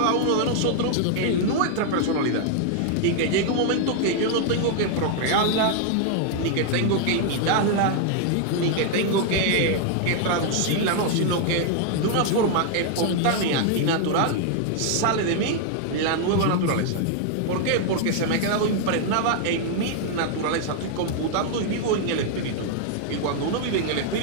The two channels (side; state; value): both; different; correlation 0.00